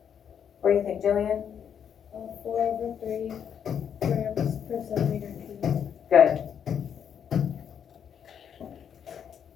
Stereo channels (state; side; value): quieter; right; 8.2 dB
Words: What do you think, Jillian? 4 over 3 grams per centimeter cubed. Good.